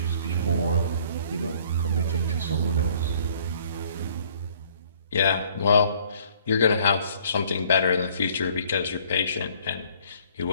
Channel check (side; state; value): both; inverted; correlation -0.58